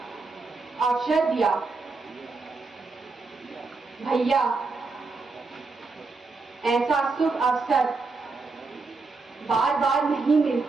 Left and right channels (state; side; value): quieter; left; 4.0 dB